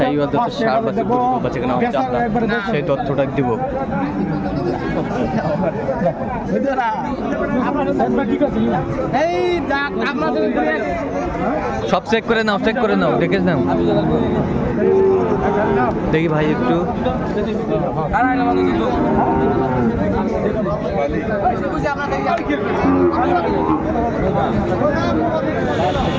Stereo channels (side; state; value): both; identical; correlation 1.00